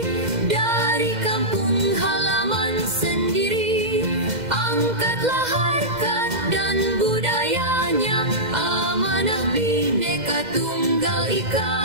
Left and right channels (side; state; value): left; late; 2.0 ms